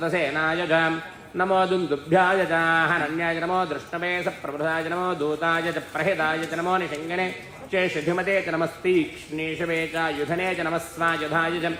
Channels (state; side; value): identical; both; correlation 1.00